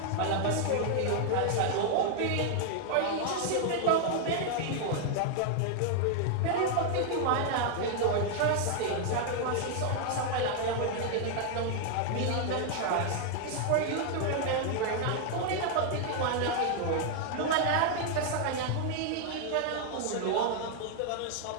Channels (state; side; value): different; both; correlation 0.00